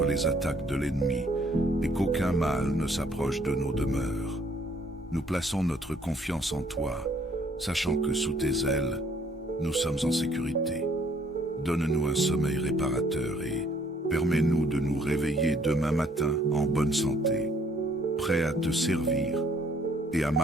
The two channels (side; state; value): both; normal; correlation 0.63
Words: les attaques de l'ennemi et qu'aucun mal ne s'approche de nos demeures. Nous plaçons notre confiance en toi, sachant que sous tes ailes, nous sommes en sécurité. Donne-nous un sommeil réparateur et permets-nous de nous réveiller demain matin en bonne santé, prêts à te servir et à